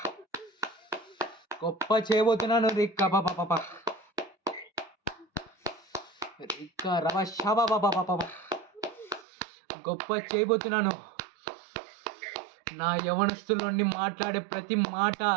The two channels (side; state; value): left; drops out; at 9.2 s